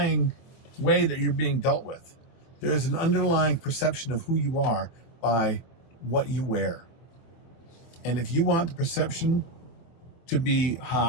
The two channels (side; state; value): right; late; 24 ms